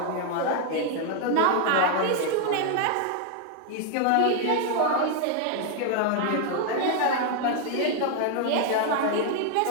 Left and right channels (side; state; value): both; different; correlation 0.00